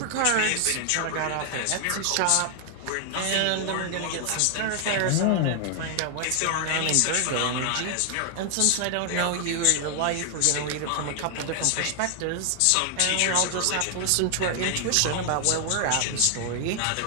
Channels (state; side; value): different; both; correlation 0.00